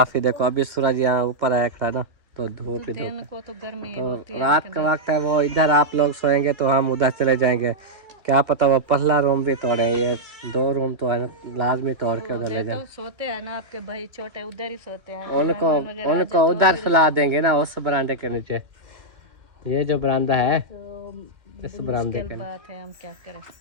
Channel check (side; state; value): left; late; 2.4 ms